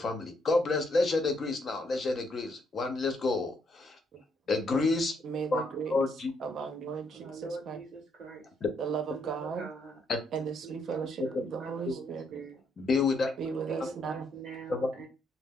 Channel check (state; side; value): normal; both; correlation 0.73